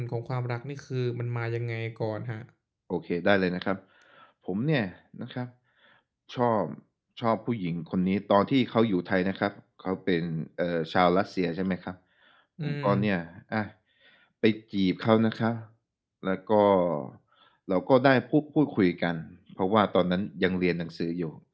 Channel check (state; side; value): identical; both; correlation 1.00